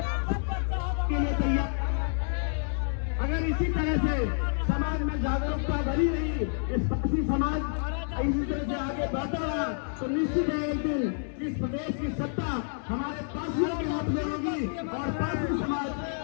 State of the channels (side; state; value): right; silent; digital silence